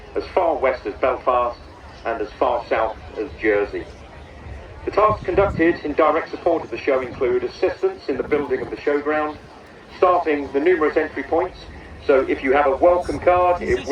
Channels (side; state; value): both; identical; correlation 1.00